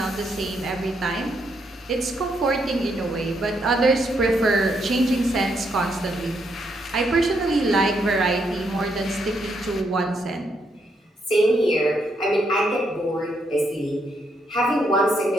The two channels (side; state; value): both; normal; correlation 0.77